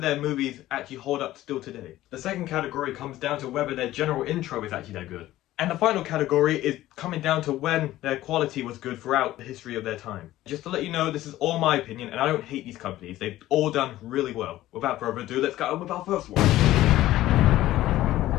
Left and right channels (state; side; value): quieter; right; 15.1 dB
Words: their movies actually hold up still today. The second category comes down to whether their general intro is actually that good. And the final category is coming down to when their quality was good throughout the history of their time. Just to let you know, this is all my opinion, and I don't hate these companies. They've all done really well. Without further ado, let's get on with our first one.